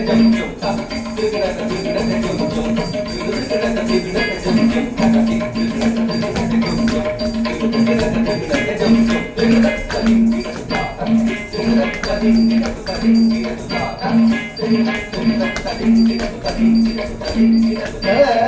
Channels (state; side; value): identical; both; correlation 1.00